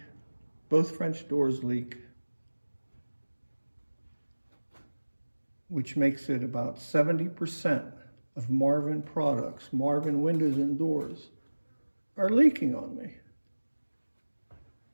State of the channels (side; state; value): both; inverted; correlation -1.00